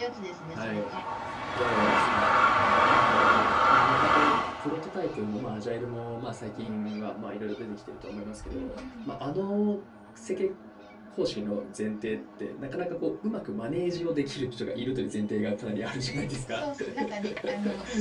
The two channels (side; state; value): both; identical; correlation 1.00